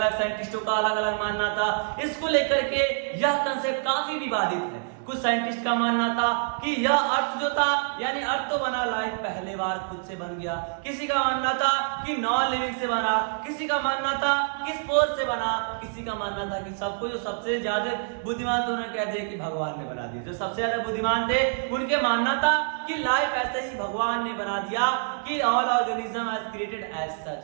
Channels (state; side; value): silent; left; digital silence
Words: साइंटिस्टों का अलग अलग मानना था। इसको लेकर के यह कंसेप्ट काफी विवादित है। कुछ साइंटिस्ट का मानना था कि यह अर्थ जो था, यानी अर्थ तो बना, लाइफ पहले बार खुद से बन गया। किसी का मानना था कि नॉन लिविंग से बना, किसी का मानना था कि स्पोर से बना, किसी का मानना था कि सबको जो सबसे ज्यादा बुद्धिमान थे उन्होंने कह दिया कि भगवान ने बना दिया। जो सबसे ज्यादा बुद्धिमान थे उनके मानना था कि लाइफ ऐसे ही भगवान ने बना दिया, कि all organism has created as such,